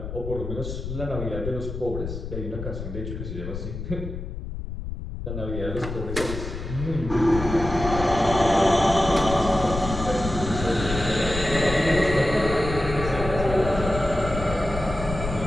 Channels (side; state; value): left; noise; rumble, 7 dB below the sound